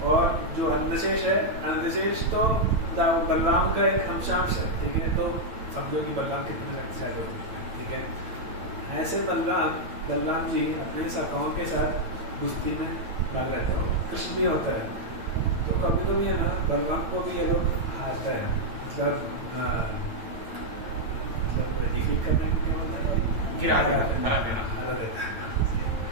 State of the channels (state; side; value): late; left; 9.0 ms